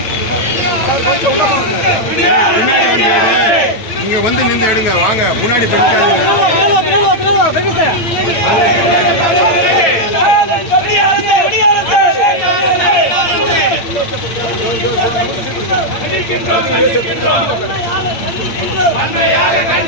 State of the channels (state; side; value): late; right; 8.6 ms